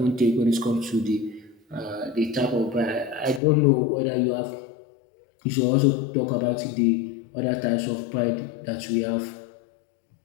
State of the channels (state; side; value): drops out; right; at 3.4 s